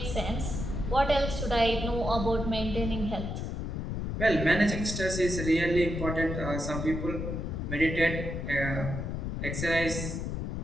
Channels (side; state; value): left; noise; rumble, 3 dB below the sound